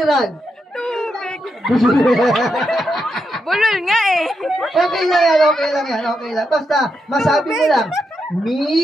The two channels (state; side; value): normal; both; correlation 0.84